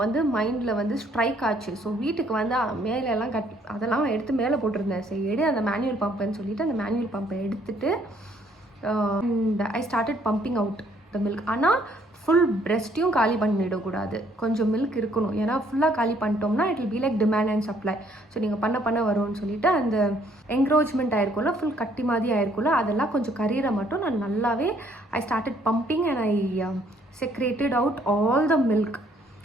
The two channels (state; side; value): normal; both; correlation 0.65